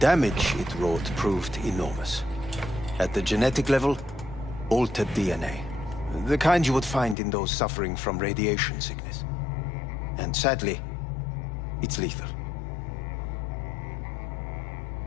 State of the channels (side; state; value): right; drops out; at 7.2 s